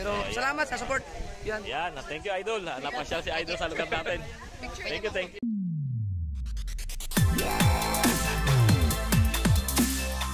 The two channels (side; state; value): both; identical; correlation 1.00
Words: salamat sa support. Yan. Yan. Thank you, Idol. Napasyal si Idol sa lugar natin. Thank you.